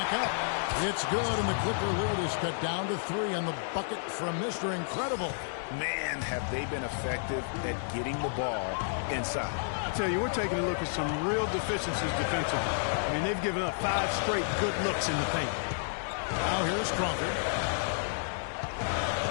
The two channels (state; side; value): silent; right; digital silence